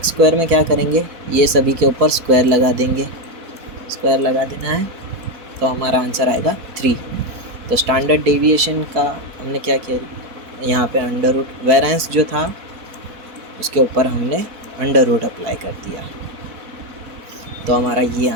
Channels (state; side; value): late; left; 4.1 ms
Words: स्क्वायर में क्या करेंगे, ये सभी के ऊपर स्क्वायर लगा देंगे, स्क्वायर लगा देना है, तो हमारा आंसर आएगा 3। तो स्टैंडर्ड डेविएशन का हमने क्या किया, यहाँ पे अंडर रूट, वेरिएंस जो था उसके ऊपर हमने अंडर रूट अप्लाई कर दिया, तो हमारा ये